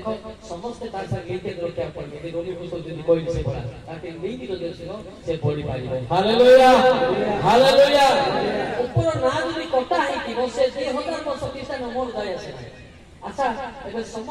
ସମସ୍ତେ ତା ସାଙ୍ଗେ ଲିଙ୍କେଜ ରଖିବାକୁ ପଡିବ। ଯଦି ରୋମୀ ପୁସ୍ତକ ଯଦି କହିଲି ସେ ଭଳିଆ ତାকে ଲିଙ୍କ୍ ଯଦି ଆସିବ ସେ ପଢିପାରିବ। Hallelujah hallelujah. ଉପର ନାଁ ଯଦି କଟା ହେଇଥିବ ସେ 2000 ବର୍ଷ ଖ୍ରୀଷ୍ଟିଆନ ମୋର ଯାଇ ଆସେ ନାହିଁ। ଆଚ୍ଛା ଏବେ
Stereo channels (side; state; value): both; identical; correlation 1.00